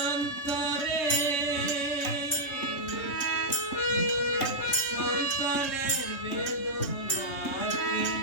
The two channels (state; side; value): late; right; 3.3 ms